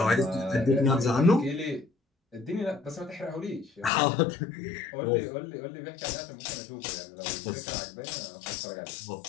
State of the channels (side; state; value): right; drops out; at 3.9 s